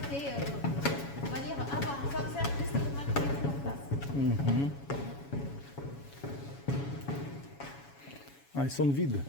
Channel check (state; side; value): late; right; 7.2 ms